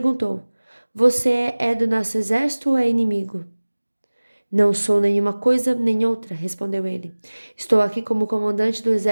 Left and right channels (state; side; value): inverted; both; correlation -1.00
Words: você é do nosso exército ou é inimigo? Não sou nenhuma coisa nem outra, respondeu ele. Estou aqui como comandante do